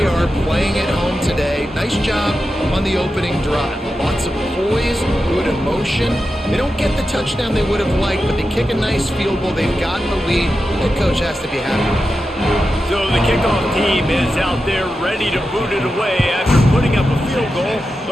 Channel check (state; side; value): normal; both; correlation 0.90